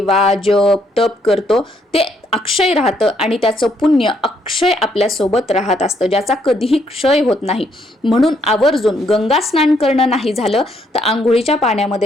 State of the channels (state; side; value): normal; both; correlation 0.72